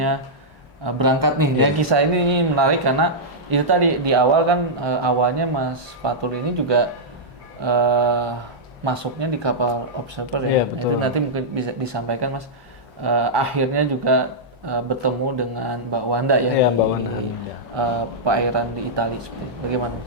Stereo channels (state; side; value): normal; both; correlation -0.09